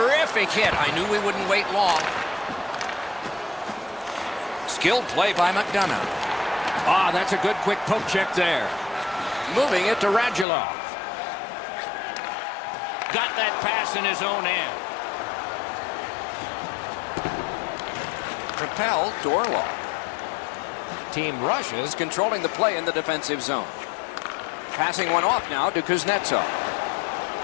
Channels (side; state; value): right; drops out; at 10.5 s